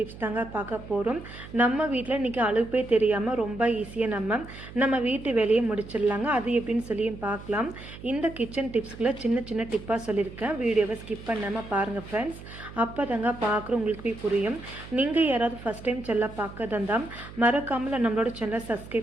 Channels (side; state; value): right; noise; hum, 15 dB below the sound